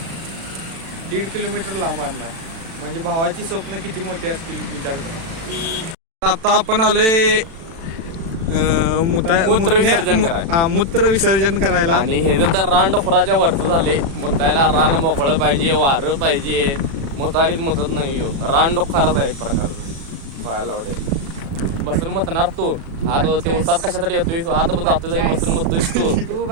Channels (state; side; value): late; left; 36 ms